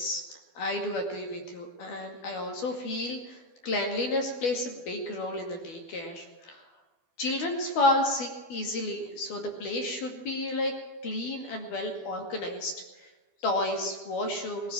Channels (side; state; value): right; late; 12 ms